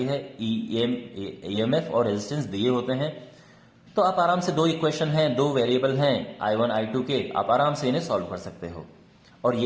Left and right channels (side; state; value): both; identical; correlation 1.00